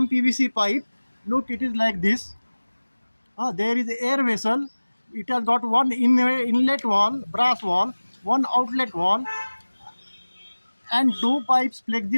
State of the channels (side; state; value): both; inverted; correlation -1.00